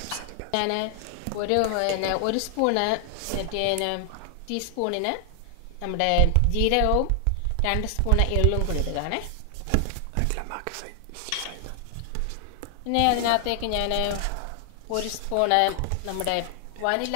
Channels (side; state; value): both; different; correlation 0.00